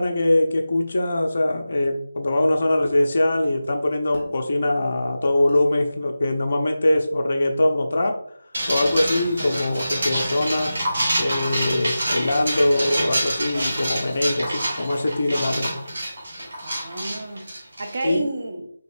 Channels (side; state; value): both; inverted; correlation -0.94